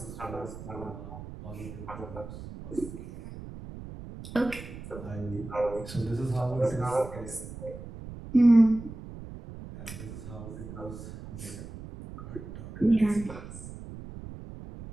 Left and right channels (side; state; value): right; noise; rumble, 12 dB below the sound